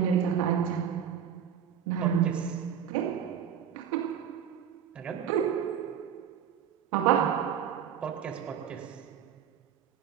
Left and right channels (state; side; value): quieter; left; 8.6 dB